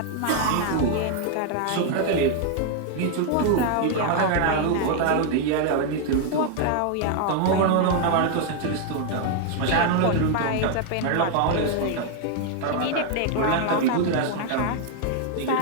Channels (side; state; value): both; different; correlation 0.00